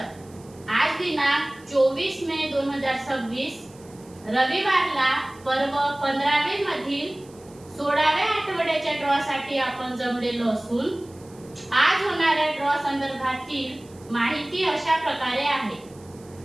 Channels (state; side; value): noise; right; hiss, 26 dB below the sound